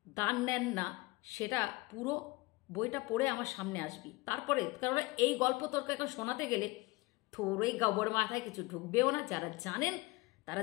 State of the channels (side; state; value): right; quieter; 22.7 dB